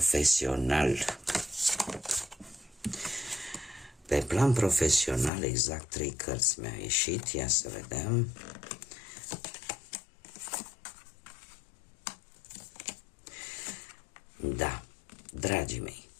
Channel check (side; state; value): right; drops out; at 5.3 s